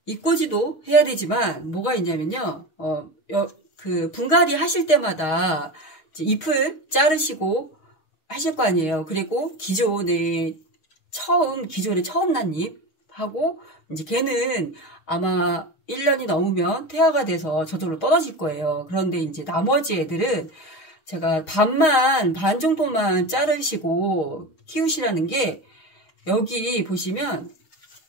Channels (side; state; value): right; late; 6.3 ms